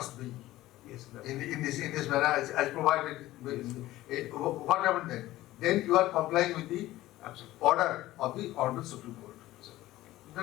be Yes, sir. in this manner as provided. What happened then? Then you are complying with the order of the Hon'ble Supreme Court.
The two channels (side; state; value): right; quieter; 16.1 dB